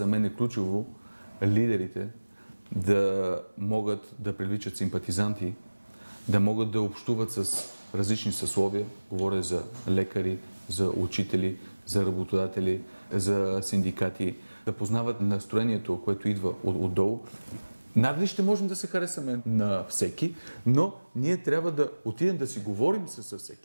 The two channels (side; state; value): both; inverted; correlation -1.00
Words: мен е ключово лидерите да могат да привличат симпатизанти, да могат да общуват с различни съсловия. Говоря за лекари, за учители, за работодатели, за синдикати, да познават настроението, което идва отдолу. Надали ще можем да се харесаме на всеки, но ние трябва да отидем да си говорим с